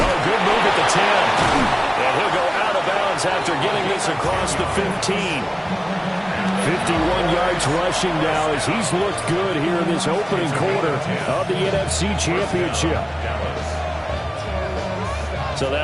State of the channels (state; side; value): identical; both; correlation 1.00